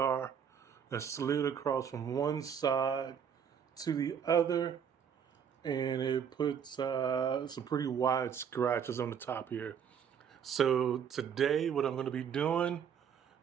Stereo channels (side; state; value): left; quieter; 7.8 dB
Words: that slid across from one side to the other, and it puts some pretty wide scratches on the top here. So today what I'm going to be doing